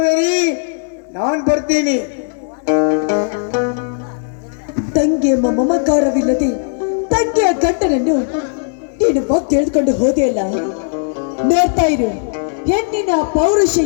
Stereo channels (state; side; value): silent; right; digital silence